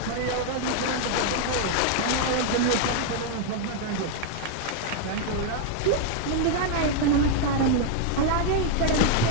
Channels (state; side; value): different; both; correlation 0.00